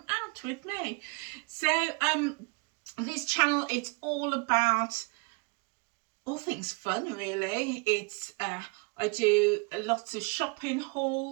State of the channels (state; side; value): quieter; left; 31.2 dB